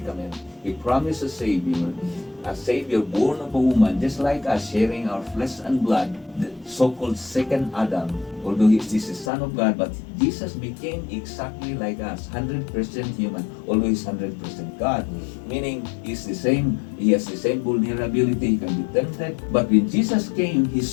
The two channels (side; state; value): right; drops out; at 9.3 s